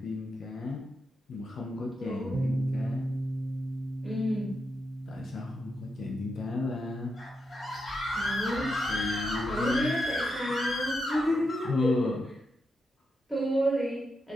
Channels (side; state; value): both; normal; correlation 0.85